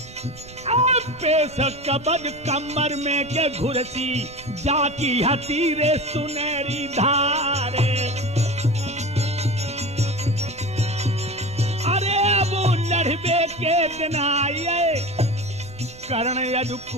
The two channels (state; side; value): noise; right; rumble, 19 dB below the sound